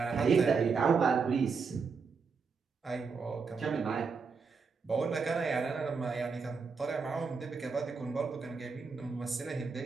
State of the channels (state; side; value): quieter; left; 5.1 dB